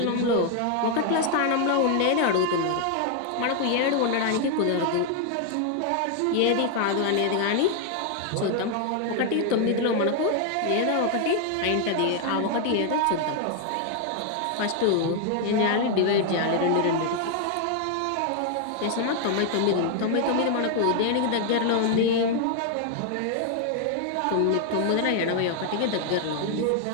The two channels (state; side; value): different; both; correlation 0.00